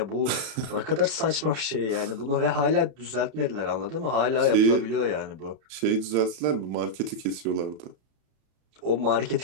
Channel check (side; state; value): left; late; 32 ms